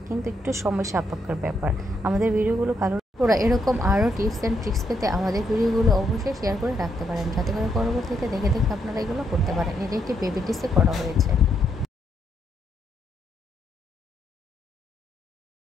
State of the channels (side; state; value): both; normal; correlation 0.76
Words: কিন্তু একটু সময় সাপেক্ষের ব্যাপার। আমাদের ভিডিওগুলো ভালো ওরা এরকম আরও টিপস অ্যান্ড ট্রিক্স পেতে আমাদের ভিডিওগুলো অবশ্যই শেয়ার করে রাখতে পারেন, যাতে করে পরবর্তীতে দেখে দেখে আপনারা এগুলো করতে পারেন। এটা একটি বেবি ড্রেসে করা হয়েছে।